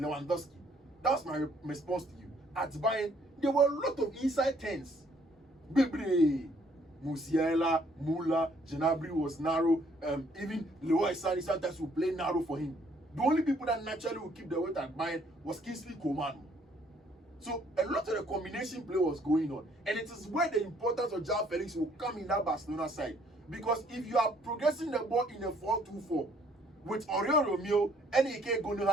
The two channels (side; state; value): both; normal; correlation 0.64